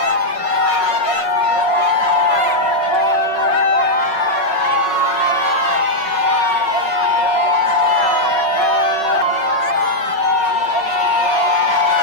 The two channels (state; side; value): late; right; 5.4 ms